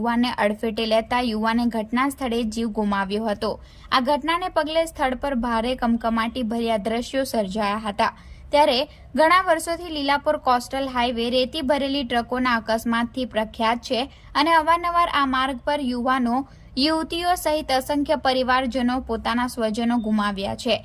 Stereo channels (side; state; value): both; identical; correlation 1.00